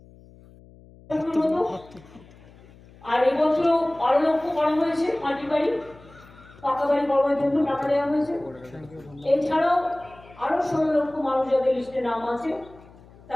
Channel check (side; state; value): left; noise; hum, 23 dB below the sound